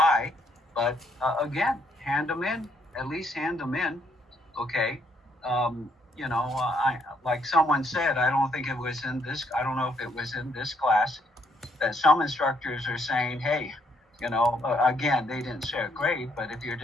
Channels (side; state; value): both; normal; correlation 0.71